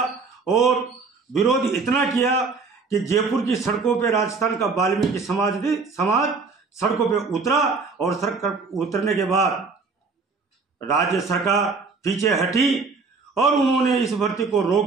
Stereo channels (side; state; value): left; quieter; 4.4 dB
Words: और विरोध इतना किया कि जयपुर की सड़कों पे राजस्थान का वाल्मीकि समाज सड़कों पे उतरा और सड़क उतरने के बाद राज्य सरकार पीछे हटी और उन्होंने इस भर्ती को